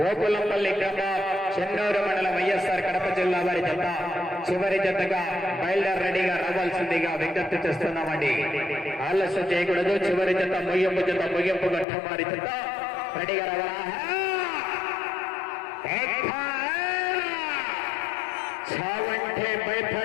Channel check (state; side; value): drops out; right; at 11.9 s